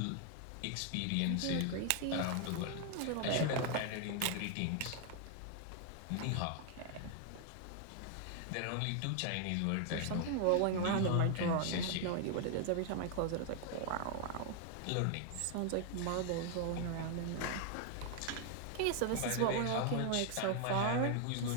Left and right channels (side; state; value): both; different; correlation 0.00